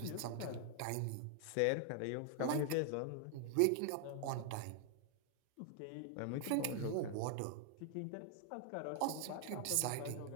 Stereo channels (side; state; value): both; different; correlation 0.00